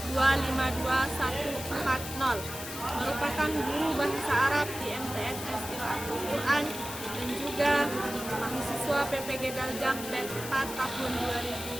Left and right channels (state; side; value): noise; left; hiss, 9 dB below the sound